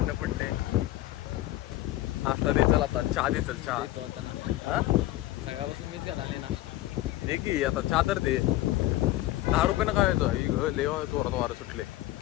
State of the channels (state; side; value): quieter; right; 15.9 dB